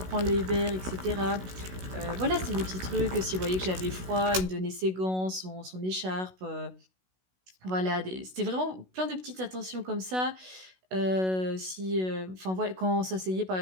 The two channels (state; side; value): late; left; 16 ms